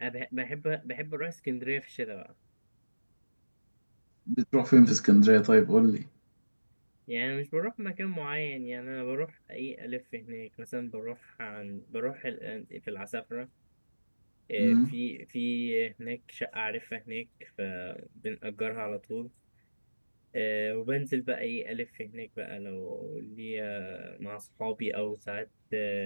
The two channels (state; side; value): inverted; both; correlation -1.00